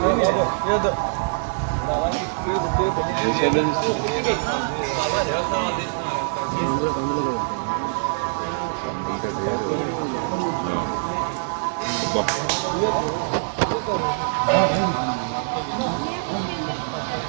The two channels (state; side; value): silent; left; digital silence